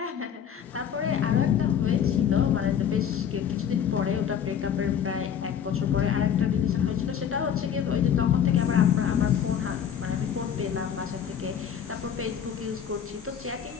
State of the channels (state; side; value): quieter; right; 8.5 dB